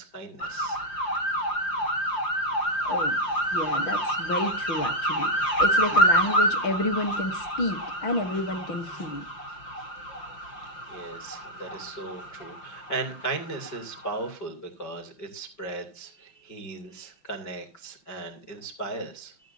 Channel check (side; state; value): right; late; 5.7 ms